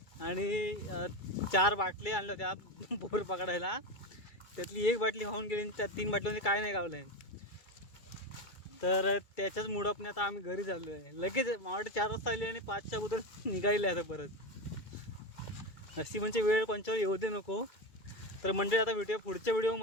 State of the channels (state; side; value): late; right; 2.3 ms